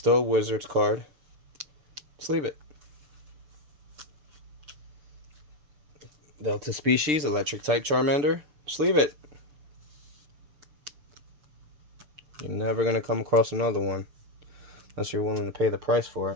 a Wizards card, let's leave it. Delta species, electric type Charmander, just leave it. You're never going to come across another one, unless you're willing to pay the price for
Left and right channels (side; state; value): left; late; 7.1 ms